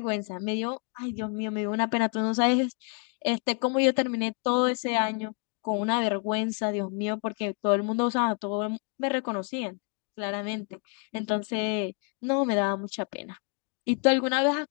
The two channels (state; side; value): quieter; right; 39.0 dB